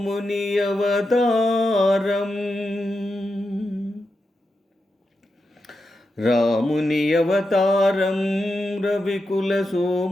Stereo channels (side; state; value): both; normal; correlation 0.88